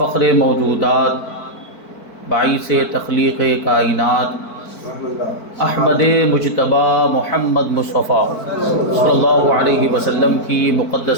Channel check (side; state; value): right; late; 4.5 ms